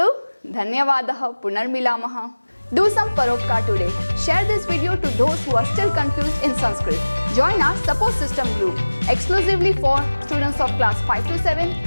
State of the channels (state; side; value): inverted; both; correlation -1.00